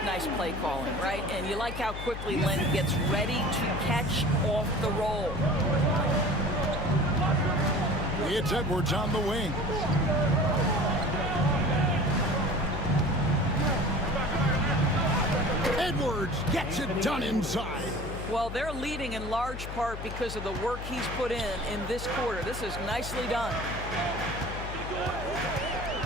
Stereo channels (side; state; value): left; noise; hum, 8 dB below the sound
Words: nice play calling, right? And you like how quickly Len gets ready to catch off the roll. It's Edwards on the wing. Edwards gets it done inside. Well, they're leading in large part because of the work he's put in this quarter. This is nicely done.